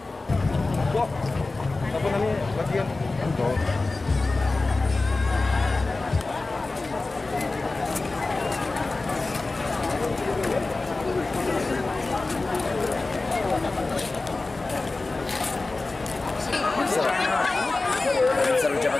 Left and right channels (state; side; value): quieter; right; 3.4 dB